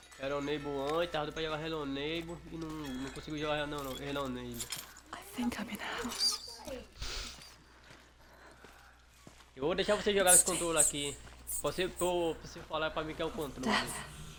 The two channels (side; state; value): both; identical; correlation 1.00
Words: Hello antes, tava pra jogar Hello e não consigo jogar Hello Neighbor. I think I'm in a house. Eu vou deixar você jogar esse controle aqui. Você falar pra mim que é o controle.